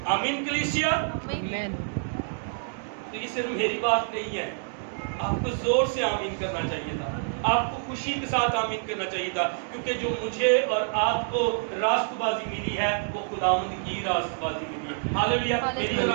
آمین کلیسیا۔ آمین۔ تو یہ صرف میری بات نہیں ہے، آپ کو زور سے آمین کرنا چاہیے تھا، آپ کو خوشی کے ساتھ آمین کرنا چاہیے تھا، کیونکہ جو مجھے اور آپ کو راست بازی ملی ہے وہ خداوند کی راست بازی ملی ہے۔ ہاللیلویا۔ میری اور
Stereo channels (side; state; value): left; silent; digital silence